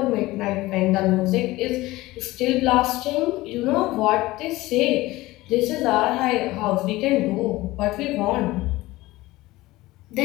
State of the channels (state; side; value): quieter; right; 18.8 dB